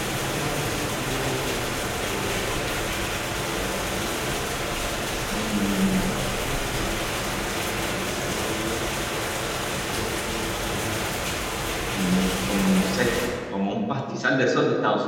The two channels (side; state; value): both; identical; correlation 1.00